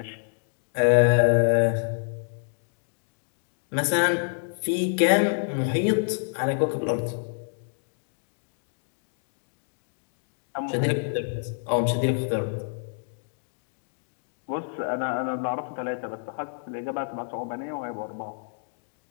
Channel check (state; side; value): silent; right; digital silence